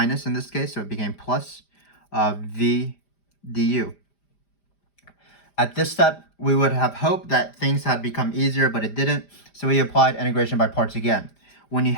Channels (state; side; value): late; right; 5.0 ms